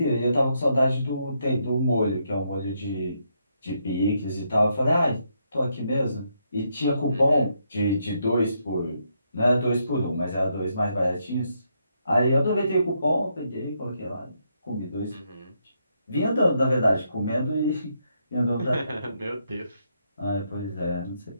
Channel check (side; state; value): both; inverted; correlation -0.78